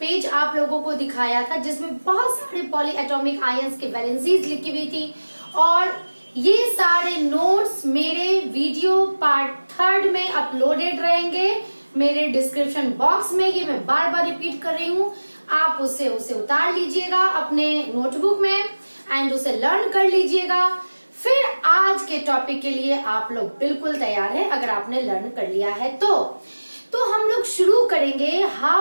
आप लोगों को दिखाया था जिसमें बहुत सारे पॉलीएटॉमिक आयंस के वैलेंसीज लिखी हुई थी और ये सारे नोट्स मेरे वीडियो पार्ट 3 में अपलोडेड रहेंगे मेरे डिस्क्रिप्शन बॉक्स में। ये मैं बार बार रिपीट कर रही हूँ, आप उसे उतार लीजिएगा अपने नोटबुक में एंड उसे लर्न कर लीजिएगा। फिर आज के टॉपिक के लिए आप लोग बिल्कुल तैयार हैं अगर आपने लर्न कर लिया है तो हम लोग शुरू करेंगे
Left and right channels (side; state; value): both; inverted; correlation -1.00